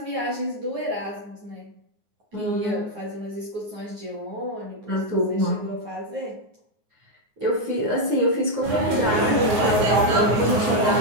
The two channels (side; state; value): left; late; 9.5 ms